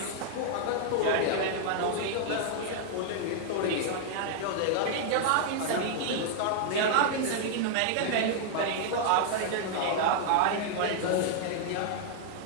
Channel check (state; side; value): different; both; correlation -0.01